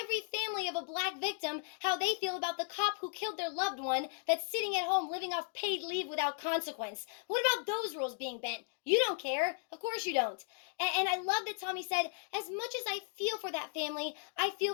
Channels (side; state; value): right; silent; 54 dB below the other